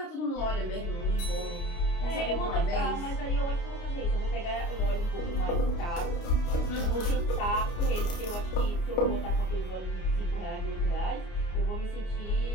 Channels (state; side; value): late; right; 29 ms